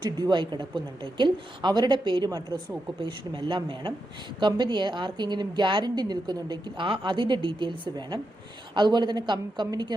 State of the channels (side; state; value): both; normal; correlation 0.86